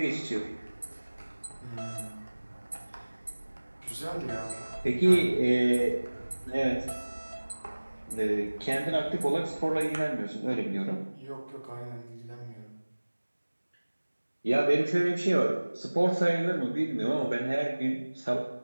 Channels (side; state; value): both; inverted; correlation -1.00